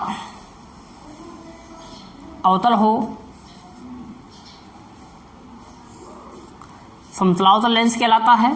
अवतल हो, समतलावतल लेंस कहलाता है।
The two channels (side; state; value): both; identical; correlation 1.00